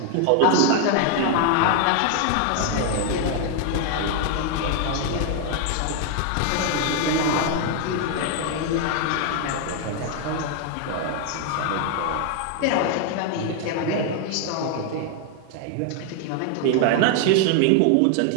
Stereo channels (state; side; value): different; both; correlation 0.00